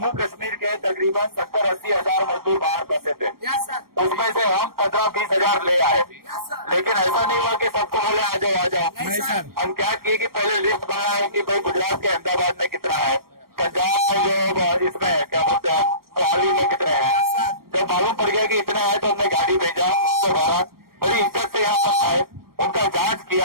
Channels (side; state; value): left; late; 0.93 ms